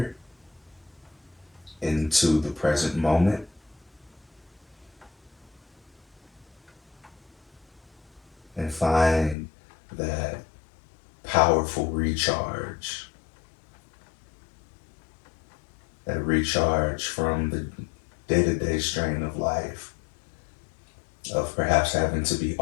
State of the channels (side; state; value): right; drops out; at 9.3 s